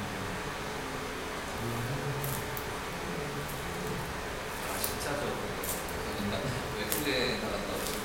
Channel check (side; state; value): both; identical; correlation 1.00